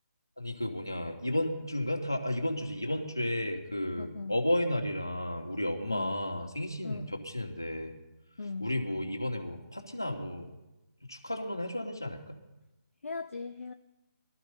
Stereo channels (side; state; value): both; inverted; correlation -0.92